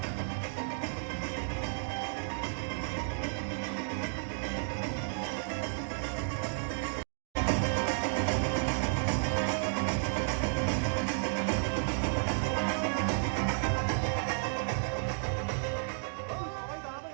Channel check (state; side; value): silent; left; 56 dB below the other